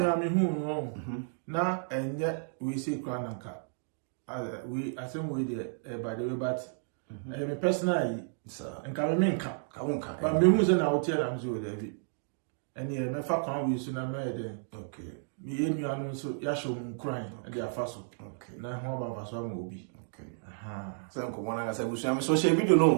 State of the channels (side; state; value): left; silent; digital silence